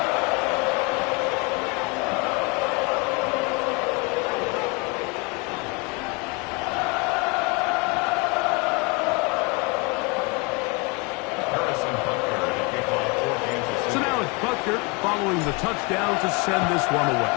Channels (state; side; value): quieter; right; 28.8 dB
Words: Following the touchdown to send this one away.